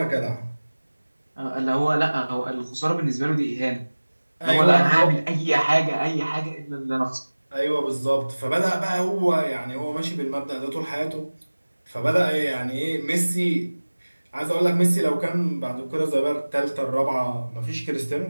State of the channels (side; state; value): both; inverted; correlation -1.00